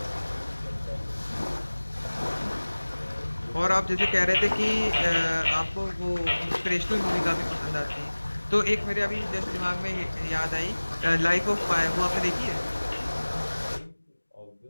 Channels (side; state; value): both; inverted; correlation -1.00